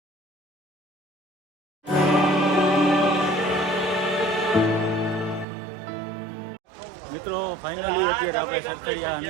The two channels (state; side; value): drops out; left; at 5.5 s